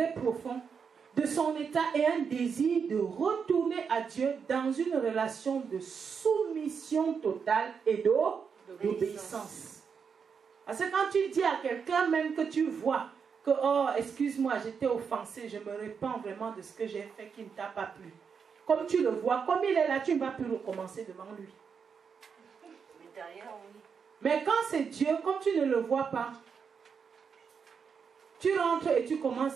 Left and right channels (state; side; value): quieter; left; 6.3 dB